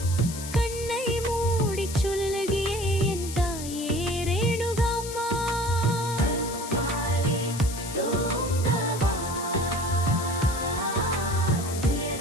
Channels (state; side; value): noise; left; hiss, 10 dB below the sound